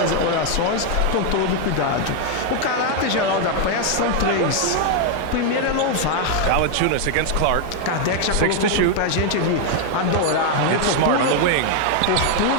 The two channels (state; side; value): different; both; correlation 0.00